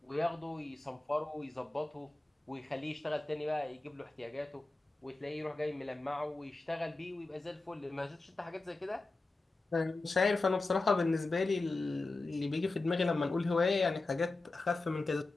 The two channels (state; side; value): quieter; right; 3.2 dB